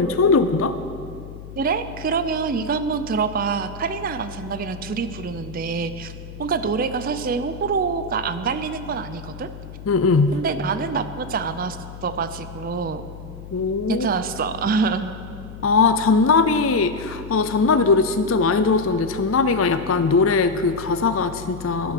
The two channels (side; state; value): left; noise; hum, 14 dB below the sound